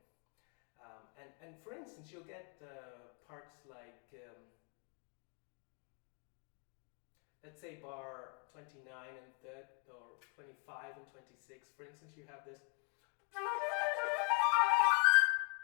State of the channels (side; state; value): right; quieter; 39.0 dB